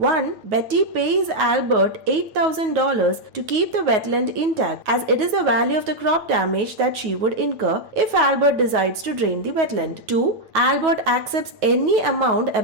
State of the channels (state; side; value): late; left; 9.3 ms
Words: Betty pays Albert $8,000 to keep the wetland intact, as it is the value of the crop damage that she would incur if Albert decides to drain the wetland. Two, Albert accepts any amount